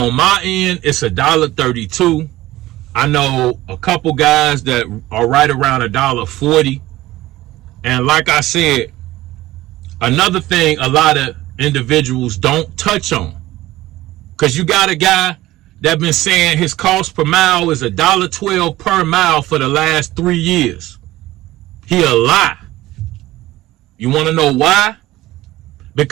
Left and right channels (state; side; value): quieter; left; 16.8 dB